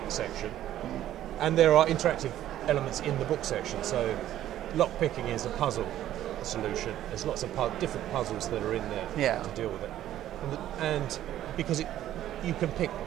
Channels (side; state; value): left; quieter; 12.5 dB